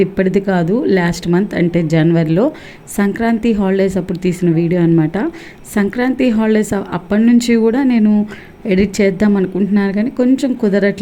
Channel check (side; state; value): both; identical; correlation 1.00